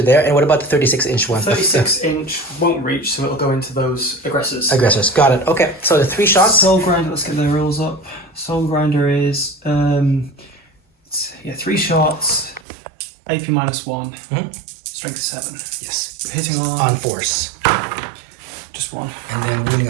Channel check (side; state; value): left; drops out; at 12.6 s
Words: there. And what about the 36-inch one? 36-inch won't reach, so it'll go into those aggressors. Aggressors. Got it. Okay. So the 3 shots. Soul grinder. Let's get the rules up. Soul grinder is 3 shots. AP -1. Strength 7. Yes. Hitting On force. just 1. And then wounding